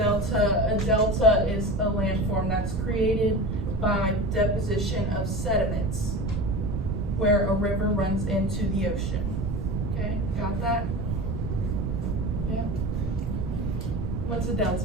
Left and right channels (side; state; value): right; noise; rumble, 2 dB below the sound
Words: A delta is a landform that's created by deposition of sediments where a river runs into the ocean. Okay, got that? Yeah? What's a